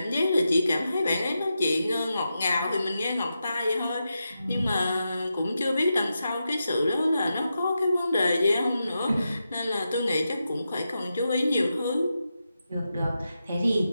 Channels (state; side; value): inverted; both; correlation -0.89